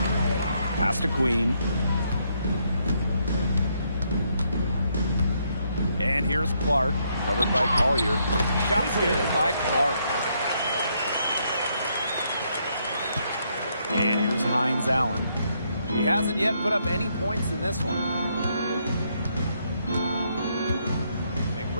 Pass to Queen. And here's Clark. Covered by Collier. Shots good by Clark. And here's Hines Allen. She hasn't yet put up any points in this one.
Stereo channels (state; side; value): inverted; both; correlation -0.74